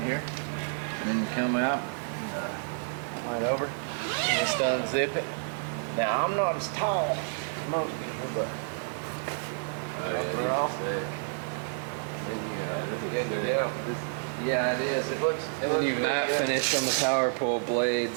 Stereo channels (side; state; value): left; silent; 58 dB below the other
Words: here, and then you come out right over, and just unzip it. Now I'm not as tall as most people, but. Yeah, it is. It looks You matte finish on the power pole